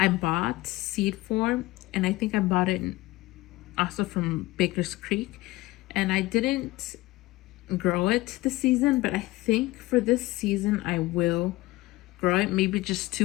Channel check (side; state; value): right; quieter; 19.3 dB